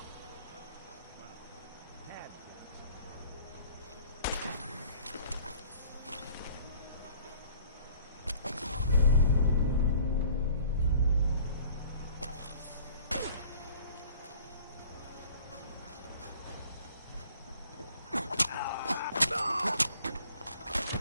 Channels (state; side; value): inverted; both; correlation -0.51